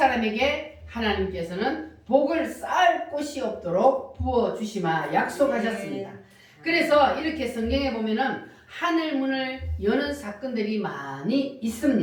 하나님께서는 복을 쌓을 곳이 없도록 부어주시마 약속하셨습니다. 그래서 이렇게 성경에 보면은 하늘문을 여는 사건들이 많이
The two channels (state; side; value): identical; both; correlation 1.00